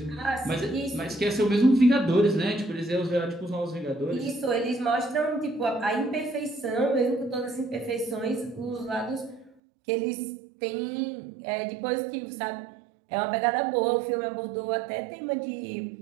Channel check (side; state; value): left; drops out; at 9.5 s